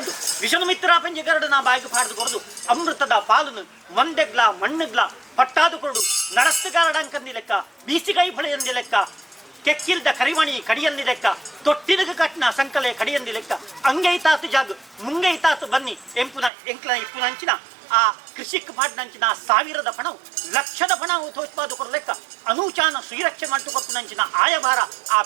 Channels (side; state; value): left; drops out; at 16.5 s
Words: ವಿಷನು ಮಿತ್ರ ಪಂಜಗರಡು ನಾ ಬಾಯಿಗೆ ಪಾಡ್ದು ಕೊರದು ಅಮೃತದ ಪಾಲುನು ಮಂದೆಗ್ಲ ಮಣ್ಣುಗ್ಲ ಪಟ್ಟಾದು ಕೊರಡು ನಡಸ್ತುಗಾರಡಂಕಂದಿ ಲೆಕ್ಕ ಬೀಸಿಗೈ ಫಳೆಯಂದಿ ಲೆಕ್ಕ ಕೆಕ್ಕಿಲ್ದ ಕರಿಮಣಿ ಕಡಿಯಂದಿ ಲೆಕ್ಕ ತೊಟ್ಟಿಲಗ ಕಟ್ನ ಸಂಕಲೆ ಕಡಿಯಂದಿ ಲೆಕ್ಕ ಅಂಗೈತಾತು ಜಾಗು ಮುಂಗೈತಾತು ಬನ್ನಿ ಎಂಪುನ ಎಂಕ್ಲ ಇಪ್ಪುನಂಚಿನ ಆ ಕೃಷಿಕ್ ಪಾಡ್ನಂಚಿನ ಸಾವಿರದ ಪಣವು ಲಕ್ಷದ ಪಣವು ತೋಚ್ಪಾದು ಕೊರಲೆಕ್ಕ ಅನೂಚಾನ ಶ್ರೀರಕ್ಷೆ ಮಾಡ್ತುಕೊಪ್ಪುನಂಚಿನ ಆಯಭಾರ ಆ